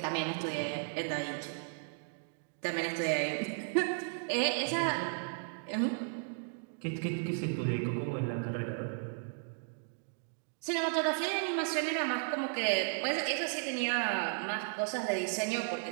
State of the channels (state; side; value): silent; left; digital silence